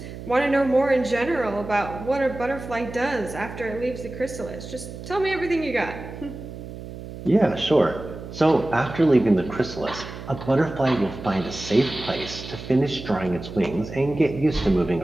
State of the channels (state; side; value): noise; right; hum, 11 dB below the sound